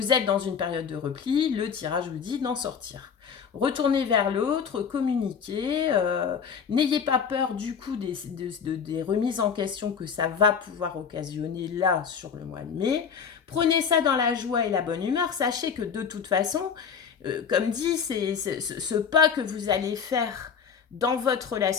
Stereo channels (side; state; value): right; quieter; 6.8 dB